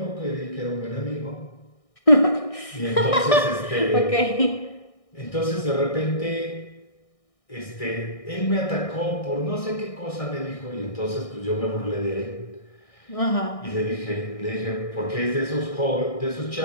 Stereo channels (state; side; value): late; right; 1.6 ms